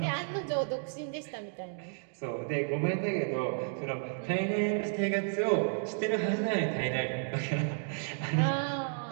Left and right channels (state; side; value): silent; left; digital silence